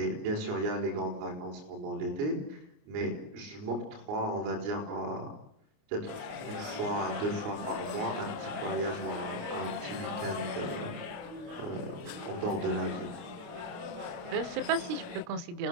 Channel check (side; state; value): left; late; 29 ms